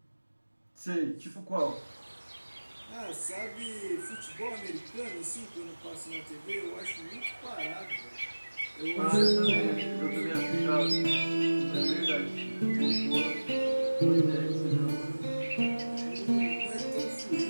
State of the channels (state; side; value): inverted; both; correlation -1.00